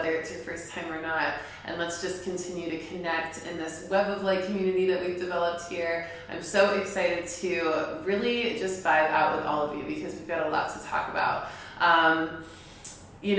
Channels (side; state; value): both; identical; correlation 1.00